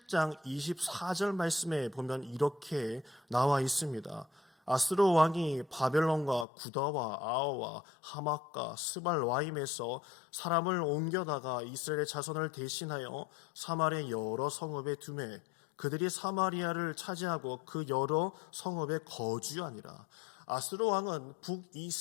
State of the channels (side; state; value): right; drops out; at 6.5 s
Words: 24절 말씀에 보면 이렇게 나와 있습니다. 아스로 왕이 바벨론과 구다와 아어와 하맛과 스발와임에서 사람을 옮겨다가 이스라엘의 자손을 대신하여 사마리아 여러 성읍에 두매 그들이 사마리아를 차지하고 그 여러 성읍에 거주하니라. 아스로 왕은